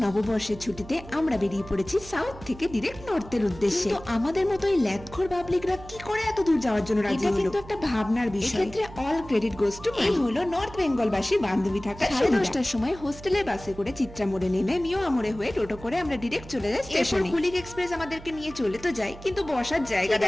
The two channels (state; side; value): noise; right; hum, 16 dB below the sound